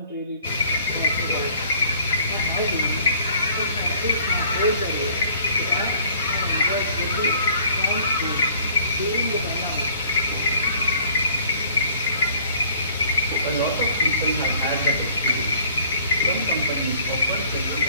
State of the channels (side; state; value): both; inverted; correlation -0.56